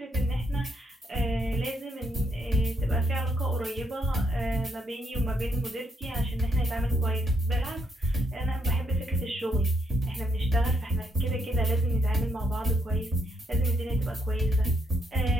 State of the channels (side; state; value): both; normal; correlation 0.76